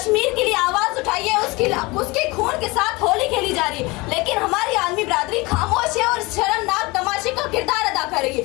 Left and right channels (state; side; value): quieter; right; 23.9 dB